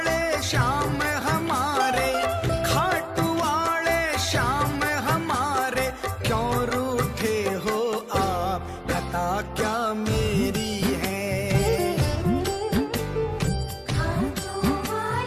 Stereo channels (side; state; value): both; identical; correlation 1.00